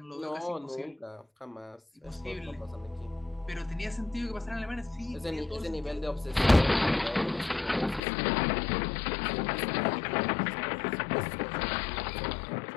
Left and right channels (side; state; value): right; drops out; at 8.0 s